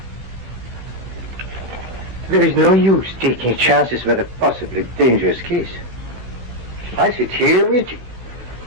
There is no use taking chances with a possibly dangerous case. I sit here waiting.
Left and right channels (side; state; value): left; late; 16 ms